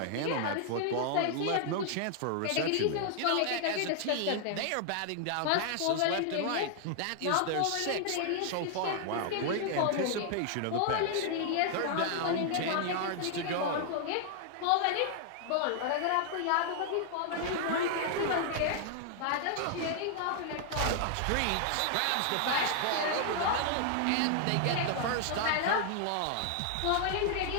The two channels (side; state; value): both; different; correlation 0.00